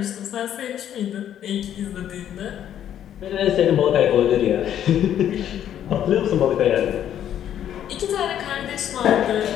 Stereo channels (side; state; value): right; quieter; 10.4 dB